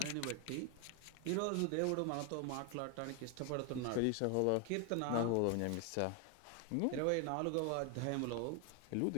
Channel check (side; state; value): both; different; correlation 0.01